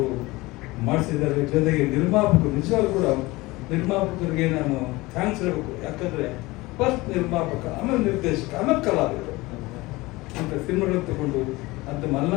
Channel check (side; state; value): right; quieter; 21.3 dB